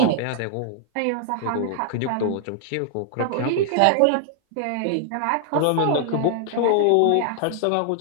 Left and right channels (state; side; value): different; both; correlation 0.00